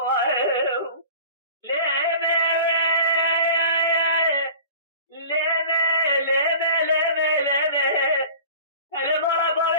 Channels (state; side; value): inverted; both; correlation -0.41